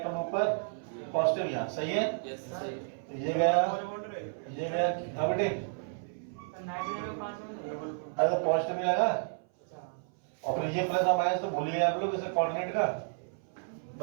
ऊपर, पॉजिटिव यहाँ, सही है? ये गया, ये गया। हाँ बेटे, अरे पॉजिटिव नहीं लगा, और फिर ये प्लस और माइनस तो भूल गए आप लोग, इसे कोऑर्डिनेट का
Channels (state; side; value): silent; left; 57 dB below the other